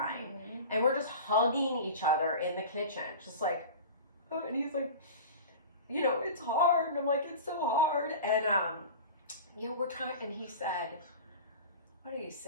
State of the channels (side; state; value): both; inverted; correlation -0.34